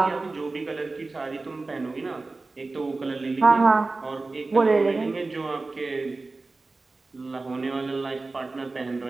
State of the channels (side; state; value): left; quieter; 3.5 dB